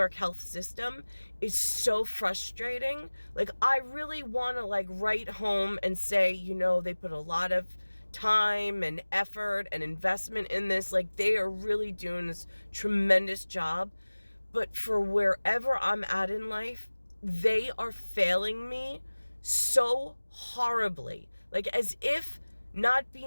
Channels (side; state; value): both; inverted; correlation -1.00